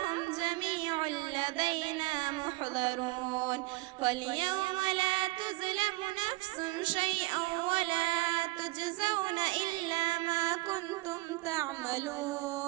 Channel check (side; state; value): left; quieter; 21.9 dB